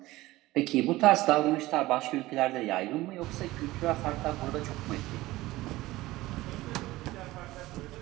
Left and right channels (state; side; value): quieter; left; 18.1 dB